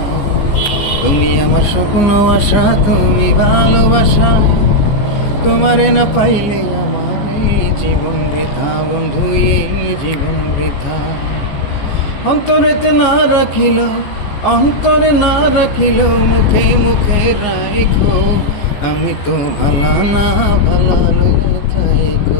তুমি আমার স্বপ্ন আশা, তুমি ভালোবাসা, তোমারে না পাইলে আমার এই জীবন বৃথা বন্ধু, এই জীবন বৃথা। অন্তরেতে না রাখিল, অন্তরে না রাখিল, মুখে মুখে রাখো। আমি তো ভালা না ভালা লইয়া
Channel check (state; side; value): late; right; 15 ms